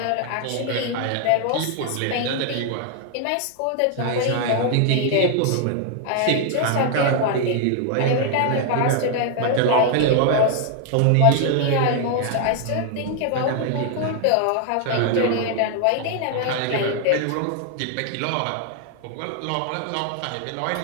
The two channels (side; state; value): both; different; correlation 0.00